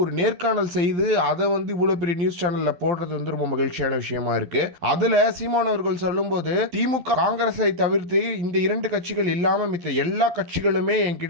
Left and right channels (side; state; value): left; late; 12 ms